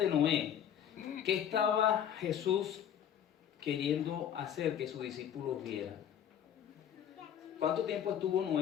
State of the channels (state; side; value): quieter; right; 9.5 dB